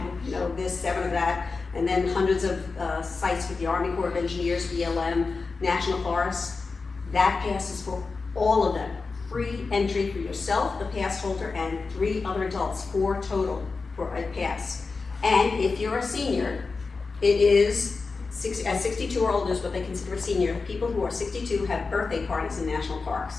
this, 7 of that, and then hundreds of sites with the Army Corps of Engineers, BLM, National Forests. That pass is for all of them. Free entry for yourself, the pass holder, and 3 other adults, 4 total for a pass. And if you're a senior, it is, at 62 or older is what they consider a senior. People who are 62 have birthday parties in national parks.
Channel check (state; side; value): quieter; right; 4.3 dB